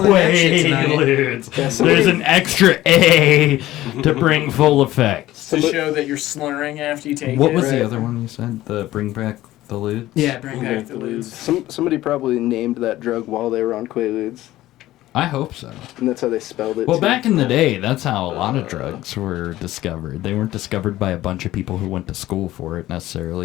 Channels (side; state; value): right; quieter; 15.5 dB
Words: that shit tonight. Quaaludes. There's an extra A to bring full effect. To show that you're slurring after you take What it. was Right. the other one you said? The bring back the ludes? Yeah, bring back the lose. Somebody probably named that drug while they were on Quaaludes, I hope so. and that's how they spelled it. Well, too. back in the day, that's how a lot of drugs were discovered. They weren't discovered by a bunch of people who went to school for it